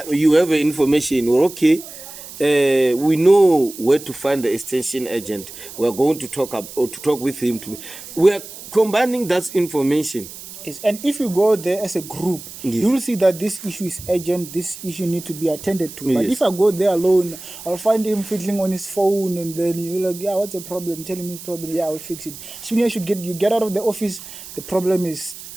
You have information. Or okay, we know where to find the extension agent. We're going to talk with him. We are combining that information. Yes, and if you go there as a group, yes, you will see that this issue is urgent, this issue needs to be attended to. But yes, if I go there alone, I'll find him fiddling on his phone, and then you're like, yeah, what's the problem? Tell him his problem. Yeah, I'll fix it. Soon as you get out of the office, the problem is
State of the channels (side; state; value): right; noise; hiss, 14 dB below the sound